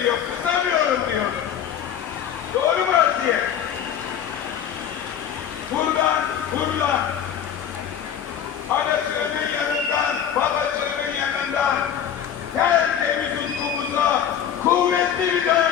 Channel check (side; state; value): right; quieter; 9.1 dB